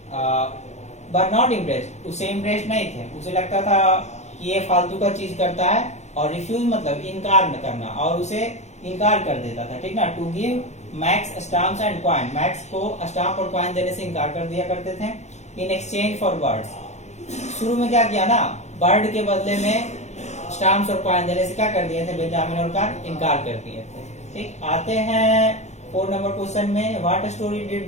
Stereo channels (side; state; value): right; late; 0.33 ms